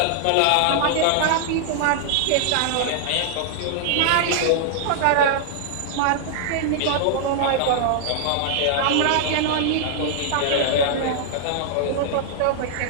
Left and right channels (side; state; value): both; different; correlation -0.01